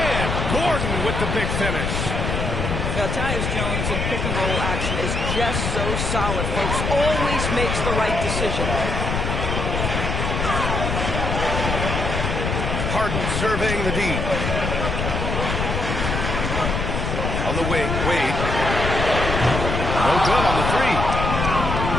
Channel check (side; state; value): left; noise; rumble, 1 dB below the sound